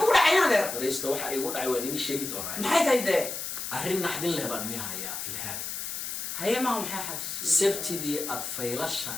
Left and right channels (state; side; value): noise; left; hiss, 5 dB below the sound